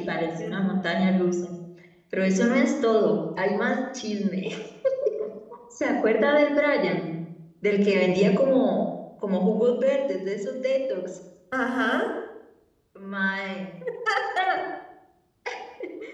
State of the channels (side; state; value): both; identical; correlation 1.00